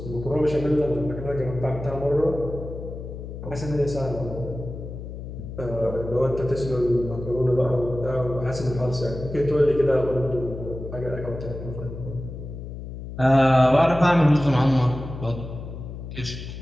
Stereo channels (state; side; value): noise; left; hum, 10 dB below the sound